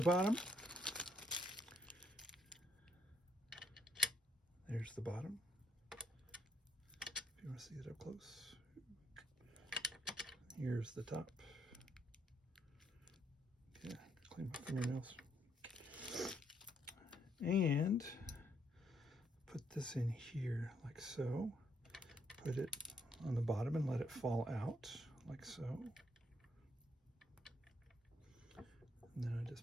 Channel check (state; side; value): normal; both; correlation 0.72